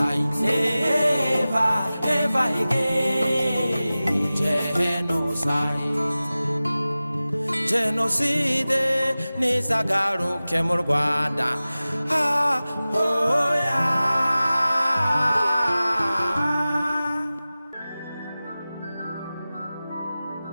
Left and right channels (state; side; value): inverted; both; correlation -0.97